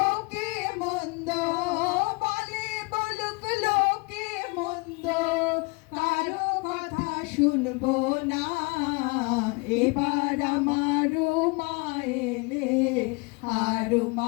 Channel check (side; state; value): right; quieter; 28.7 dB